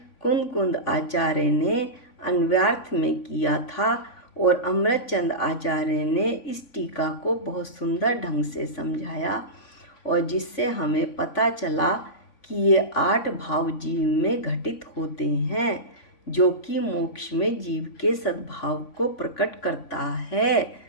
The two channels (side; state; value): right; late; 3.5 ms